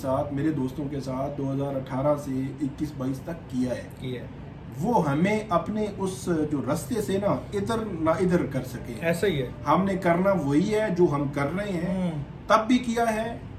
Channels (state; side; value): identical; both; correlation 1.00